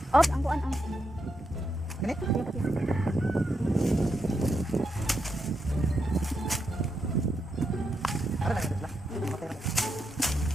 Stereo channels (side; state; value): both; normal; correlation 0.83